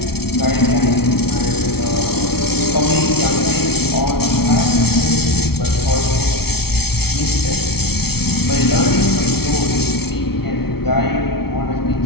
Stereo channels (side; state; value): right; late; 0.95 ms